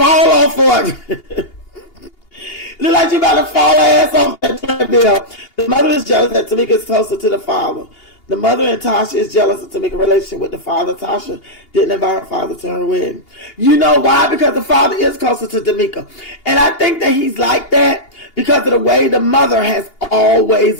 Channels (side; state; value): right; late; 2.8 ms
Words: off for it. Look like she about to fall her ass off that treadmill. The mother is jealous that Tamika is closer to the father. The mother and Tasha is jealous of Tamika's relationship with the father. Tasha didn't invite her father to her wedding. You know why? Because the father is closer to Tamika. And I think that he's like that because of the way the mother has always